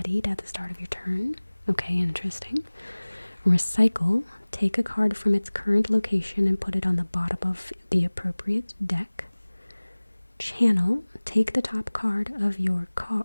at the start of your turn. Okay, interesting. Recycle, take a card from its current location and put it on the bottom of the appropriate deck. Channel, take the top card of your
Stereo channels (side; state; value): both; inverted; correlation -1.00